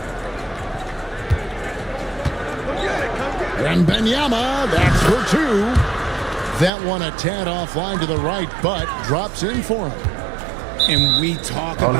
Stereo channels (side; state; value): left; drops out; at 6.7 s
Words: And Wembanyama, that's for two. That one a tad offline to the right, but drops in for him. And we talk I